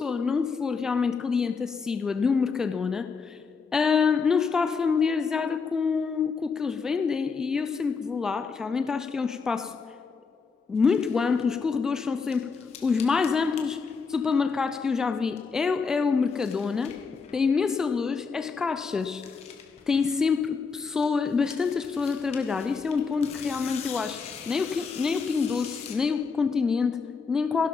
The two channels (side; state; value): right; quieter; 5.1 dB